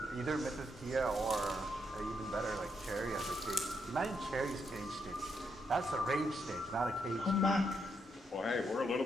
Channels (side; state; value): both; normal; correlation 0.78